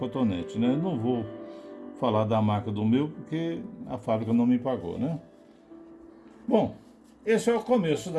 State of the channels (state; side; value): identical; both; correlation 1.00